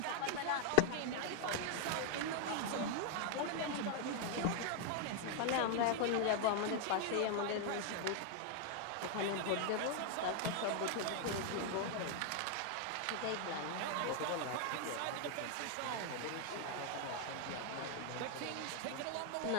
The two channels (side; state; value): both; different; correlation 0.00